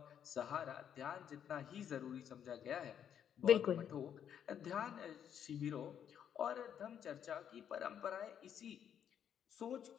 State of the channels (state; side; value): quieter; right; 8.9 dB